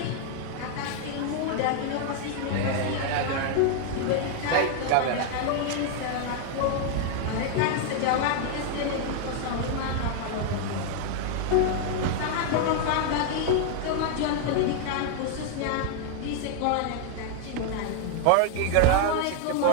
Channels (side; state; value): both; different; correlation 0.00